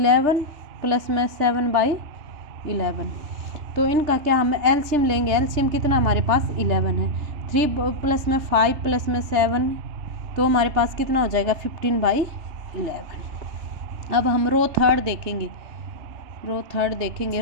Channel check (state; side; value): late; left; 3.4 ms